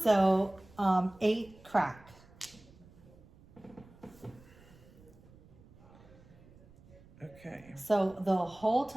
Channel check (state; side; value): noise; right; rumble, 24 dB below the sound